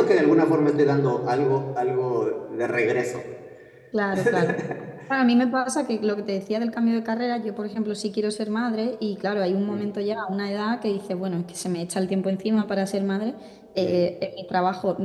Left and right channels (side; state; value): both; identical; correlation 1.00